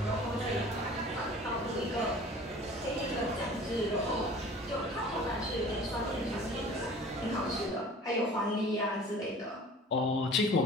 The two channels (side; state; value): both; normal; correlation 0.45